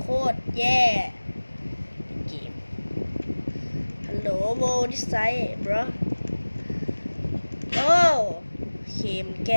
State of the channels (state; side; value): inverted; both; correlation -1.00